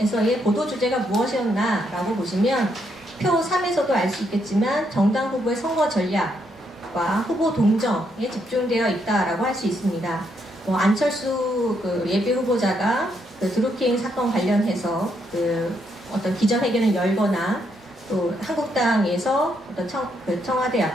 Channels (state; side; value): normal; both; correlation 0.76